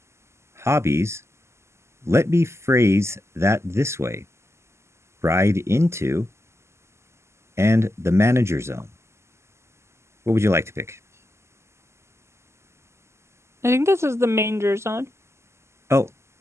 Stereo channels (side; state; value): left; late; 0.13 ms